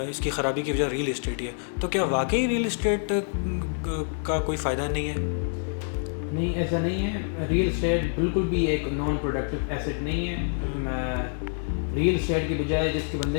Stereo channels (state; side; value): silent; right; digital silence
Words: इसकी ख़राबी की वजह रियल एस्टेट ही है। तो क्या वाकई रियल एस्टेट का कोई फ़ायदा नहीं है? नहीं, ऐसा नहीं है। रियल एस्टेट बिल्कुल भी एक नॉन प्रोडक्टिव एसेट नहीं है। रियल एस्टेट की बजाय जिसके